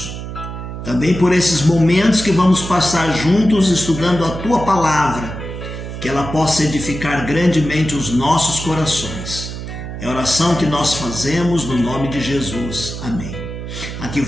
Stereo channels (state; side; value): noise; right; hum, 8 dB below the sound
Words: Também por esses momentos que vamos passar juntos estudando a Tua Palavra, que ela possa edificar grandemente os nossos corações. É a oração que nós fazemos no nome de Jesus. Amém. Aqui